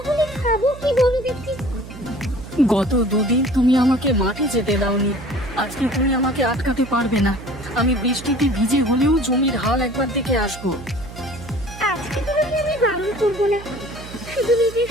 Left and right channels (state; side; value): noise; right; hum, 14 dB below the sound